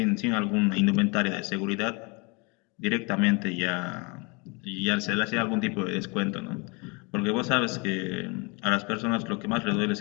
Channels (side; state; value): right; quieter; 30.1 dB